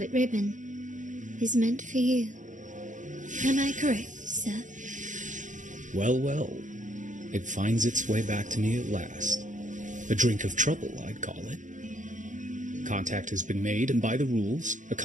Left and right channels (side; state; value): left; late; 0.36 ms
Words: ribbon is meant for you. Am I correct, sir? Well, well. It finds its way back to me at last. A drink of trouble, I'd call it. Contact has been made, and by the rules, a